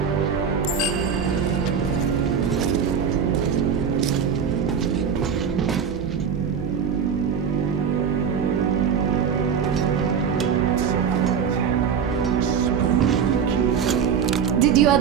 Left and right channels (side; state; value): left; quieter; 7.1 dB